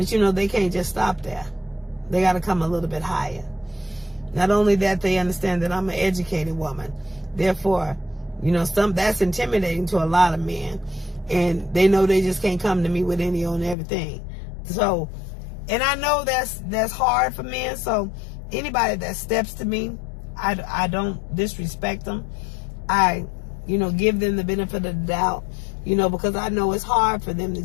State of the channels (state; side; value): drops out; right; at 13.8 s